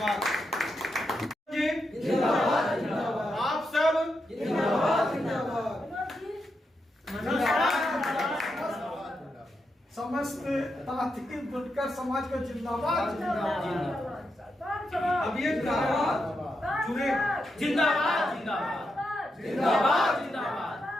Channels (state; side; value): normal; both; correlation 0.84